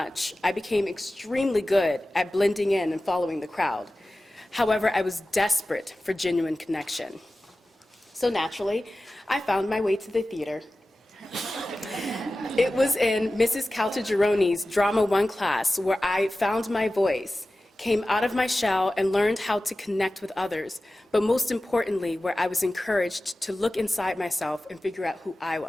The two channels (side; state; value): both; normal; correlation 0.96